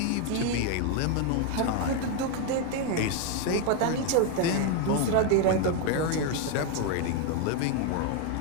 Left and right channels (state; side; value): different; both; correlation 0.01